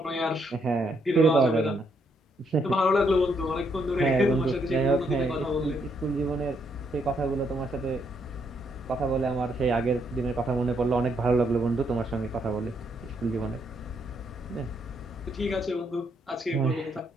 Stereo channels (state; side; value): normal; both; correlation 0.74